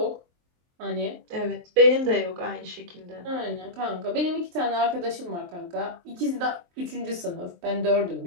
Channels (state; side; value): late; left; 23 ms